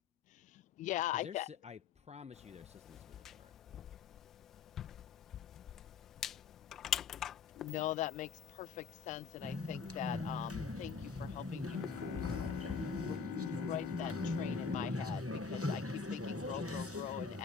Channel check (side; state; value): right; quieter; 5.9 dB